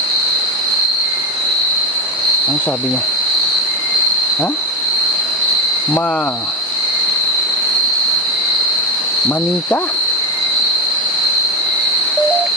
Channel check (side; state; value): both; normal; correlation 0.12